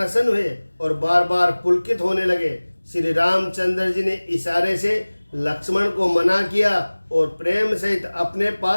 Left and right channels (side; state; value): both; inverted; correlation -1.00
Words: हुए और बार बार पुलकित होने लगे। श्री रामचंद्र जी ने इशारे से लक्ष्मण को मना किया और प्रेम सहित अपने